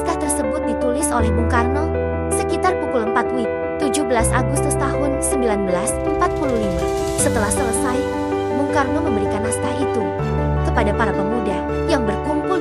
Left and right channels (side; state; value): both; identical; correlation 1.00